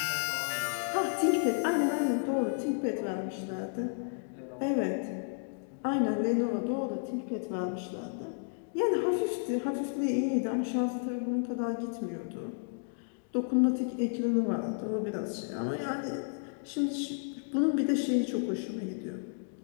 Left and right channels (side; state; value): right; silent; digital silence